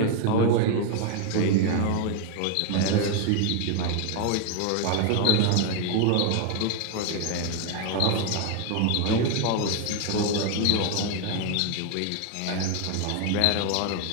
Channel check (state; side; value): different; both; correlation 0.01